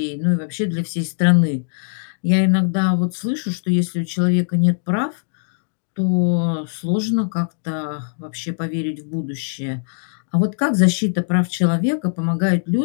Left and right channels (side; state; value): right; silent; digital silence